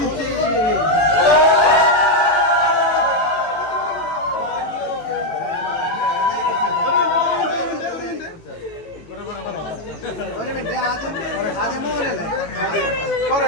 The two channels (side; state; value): right; late; 18 ms